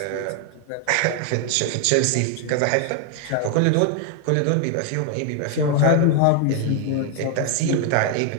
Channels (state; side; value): different; both; correlation 0.00